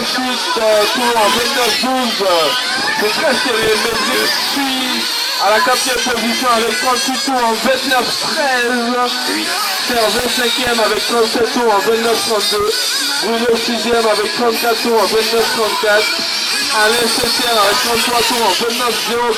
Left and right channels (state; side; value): identical; both; correlation 1.00